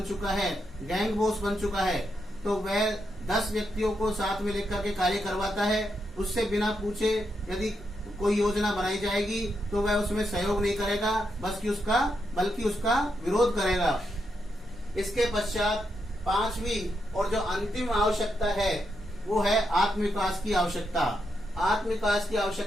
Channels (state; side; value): normal; both; correlation 0.82